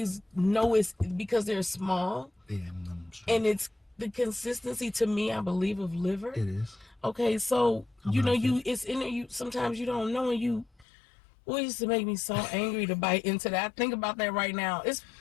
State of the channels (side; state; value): right; drops out; at 10.9 s